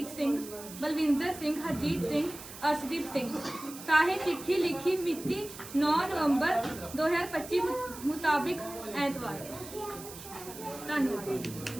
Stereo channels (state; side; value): noise; right; hiss, 14 dB below the sound